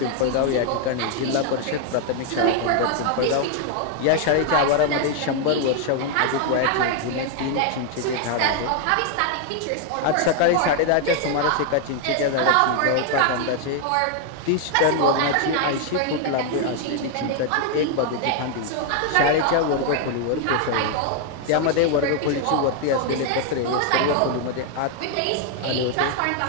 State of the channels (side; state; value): both; different; correlation 0.00